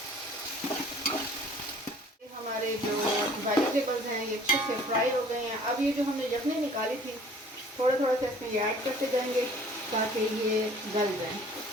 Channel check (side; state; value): both; normal; correlation 0.52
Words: हमारे जो वेजिटेबल्स हैं ये अच्छे से फ्राई हो गए हैं। अब ये जो हमने यखनी निकाली थी, थोड़ा थोड़ा सा इसमें ये ऐड करते जाएंगे ताकि ये गल जाए।